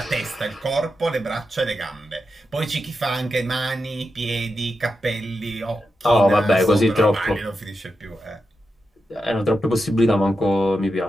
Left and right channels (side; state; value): both; normal; correlation 0.88